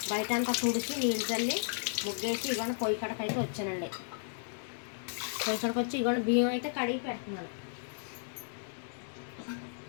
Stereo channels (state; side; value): silent; right; digital silence